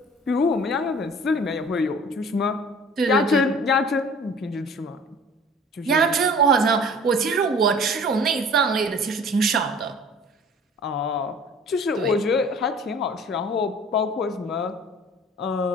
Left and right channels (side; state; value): both; normal; correlation 0.47